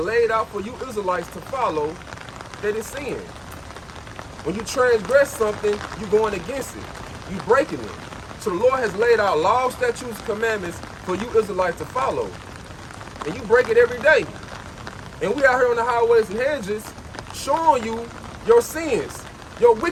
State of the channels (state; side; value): identical; both; correlation 1.00